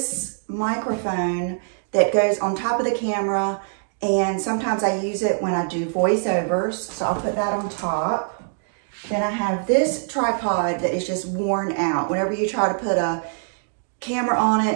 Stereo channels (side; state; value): left; silent; digital silence